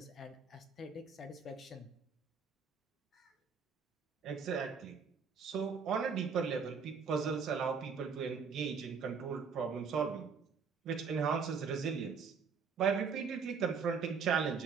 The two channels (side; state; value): left; quieter; 5.7 dB